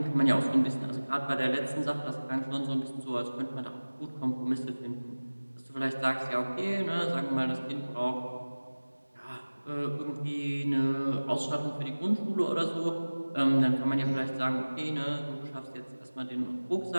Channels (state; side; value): inverted; both; correlation -1.00